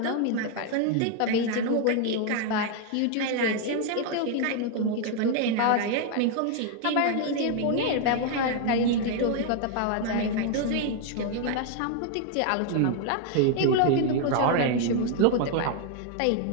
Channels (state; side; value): different; both; correlation 0.00